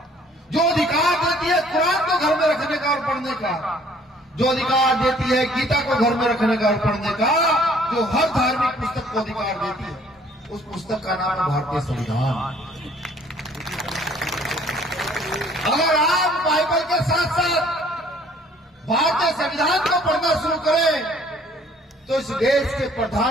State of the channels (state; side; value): normal; both; correlation 0.58